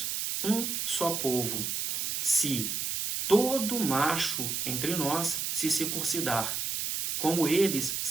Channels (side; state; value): right; noise; hiss, 1 dB below the sound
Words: um só povo, se todo macho entre nós se circuncidar, como eles